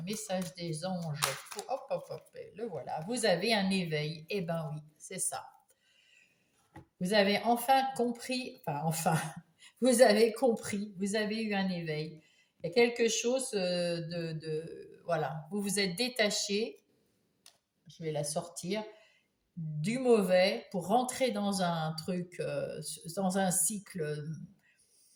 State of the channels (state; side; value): identical; both; correlation 1.00